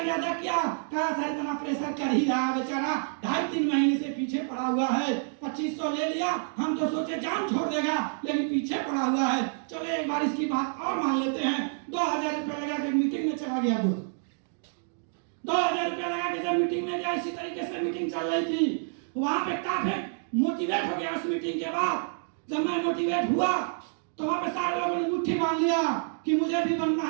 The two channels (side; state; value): left; silent; digital silence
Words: किया, कहा सर इतना प्रेशर कर ही रहा है बेचारा, 2.5-3 महीने से पीछे पड़ा हुआ है, 2500 ले लिया, हम तो सोचे जान छोड़ देगा, लेकिन पीछे पड़ा हुआ है। चलो एक बार इसकी बात और मान लेते हैं। 2000 रुपया लगा के मीटिंग में चला गया। 2000 रुपया लगा के जब मीटिंग में गया, इसी तरीके से मीटिंग चल रही थी, वहां पे काफी मोटिवेट हो गया। उस मीटिंग के बाद जब मैं मोटिवेट हुआ तो वहां पे सारे लोगों ने मुट्ठी बांध लिया कि मुझे भी बनना